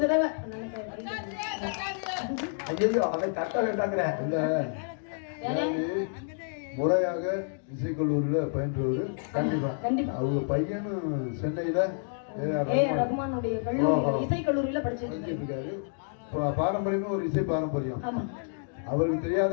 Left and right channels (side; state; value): right; silent; digital silence